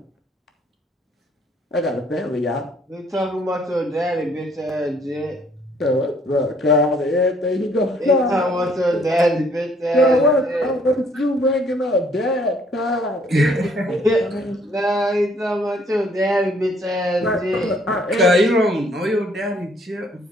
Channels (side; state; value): both; normal; correlation 0.63